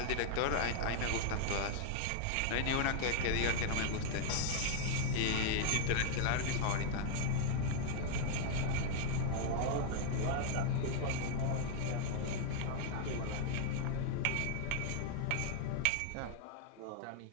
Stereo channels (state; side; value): different; both; correlation 0.00